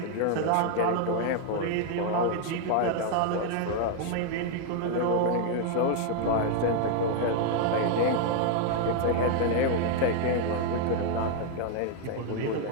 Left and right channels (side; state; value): both; different; correlation 0.00